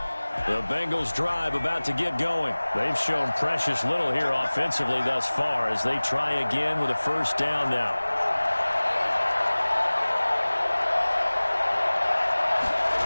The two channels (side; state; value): both; inverted; correlation -1.00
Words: The Bengals drive about to get going. They've shown precious little here offensively thus far as they try again with a 1st down now.